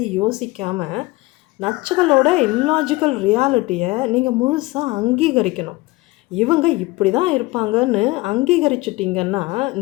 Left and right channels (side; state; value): right; quieter; 21.0 dB